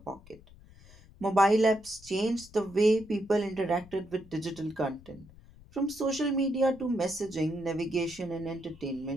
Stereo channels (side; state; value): left; noise; rumble, 23 dB below the sound